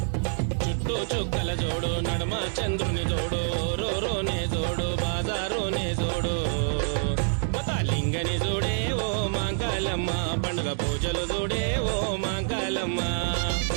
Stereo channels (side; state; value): left; silent; digital silence